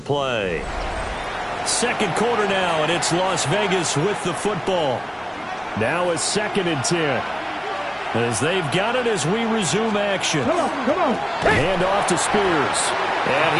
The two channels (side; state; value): both; identical; correlation 1.00